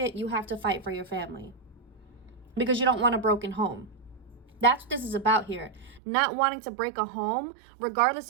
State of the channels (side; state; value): left; drops out; at 6.0 s